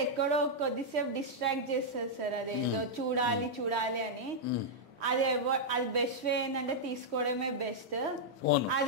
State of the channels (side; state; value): left; late; 1.2 ms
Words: ఎక్కడో కొద్దిసేపు డిస్ట్రాక్ట్ చేస్తుంది సార్. అదేదో చూడాలి అని. అది బెస్ట్ వే ఏంటంటే తీసుకోవడమే బెస్ట్.